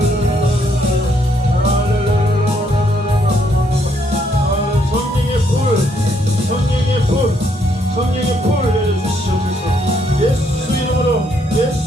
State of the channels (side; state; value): both; normal; correlation 0.72